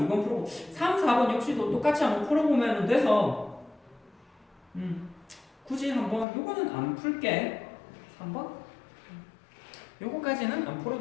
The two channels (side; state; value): right; drops out; at 6.2 s